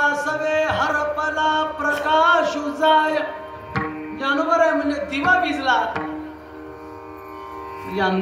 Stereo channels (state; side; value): identical; both; correlation 1.00